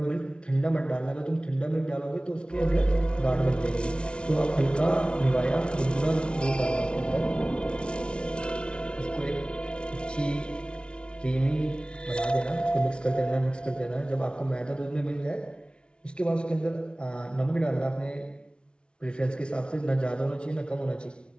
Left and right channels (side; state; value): right; late; 0.057 ms